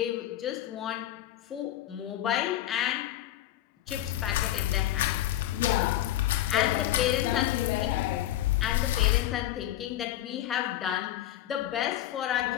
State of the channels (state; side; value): quieter; right; 13.3 dB